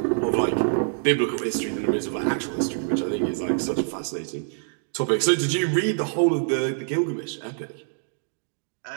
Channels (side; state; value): left; silent; digital silence